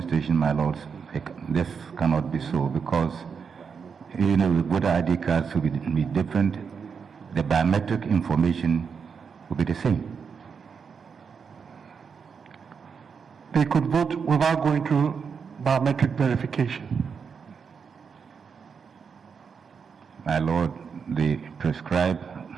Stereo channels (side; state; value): left; quieter; 6.1 dB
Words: station, my lords, this cannot be so because the voter ID cards will be different. The biometric information will be the same. They could vote without going through biometric verification. My lord, the prescribed